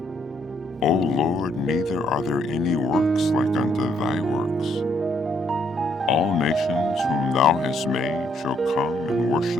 O Lord, neither are there any works like unto thy works. All nations whom thou hast made shall come and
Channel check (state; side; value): normal; both; correlation 0.71